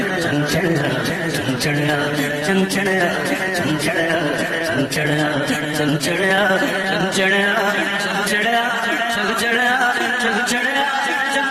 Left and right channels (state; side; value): identical; both; correlation 1.00